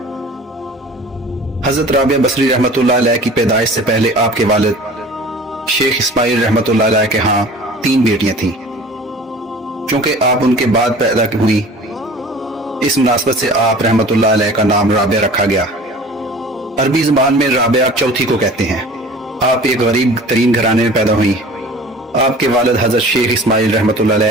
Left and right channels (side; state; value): both; normal; correlation 0.43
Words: हज़रत राबिया बसरी रहमतुल्लाह अलैह की पैदाइश से पहले आपके वालिद शेख इस्माइल रहमतुल्लाह अलैह के यहाँ 3 बेटियां थीं। चूंकि आप उनके बाद पैदा हुई, इस मुनासबत से आप रहमतुल्लाह अलैह का नाम राबिया रखा गया। अरबी ज़बान में राबिया चौथी को कहते हैं। आप एक गरीब तरीन घराने में पैदा हुई। आपके वालिद हज़रत शेख इस्माइल रहमतुल्लाह